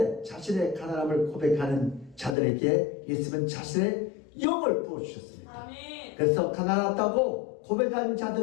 자신의 가난함을 고백하는 자들에게 예수님은 자신의 영을 부어주셨습니다. 아멘. 그래서 가난하다고 고백한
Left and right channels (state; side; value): drops out; right; at 2.4 s